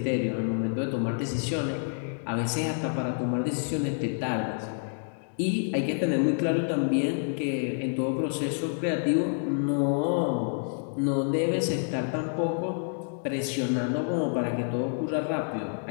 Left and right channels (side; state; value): right; silent; digital silence